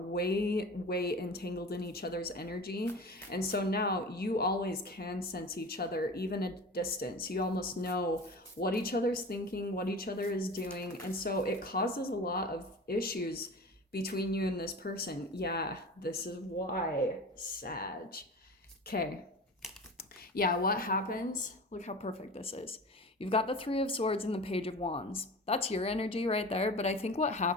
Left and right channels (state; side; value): normal; both; correlation 0.35